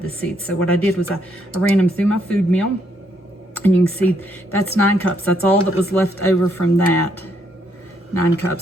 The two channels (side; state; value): both; normal; correlation 0.73